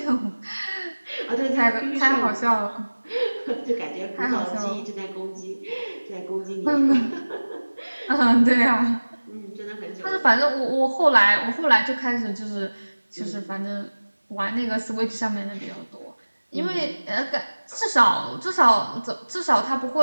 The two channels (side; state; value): both; inverted; correlation -1.00